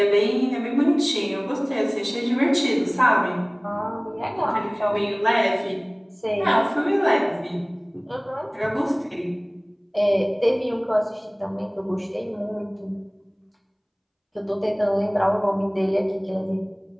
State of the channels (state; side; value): identical; both; correlation 1.00